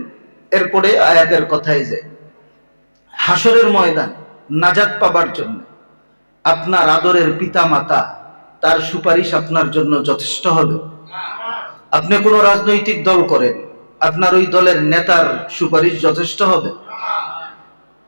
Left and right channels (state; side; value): inverted; both; correlation -1.00